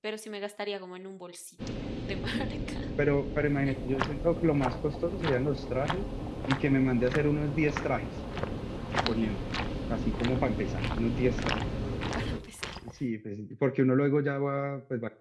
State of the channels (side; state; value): both; identical; correlation 1.00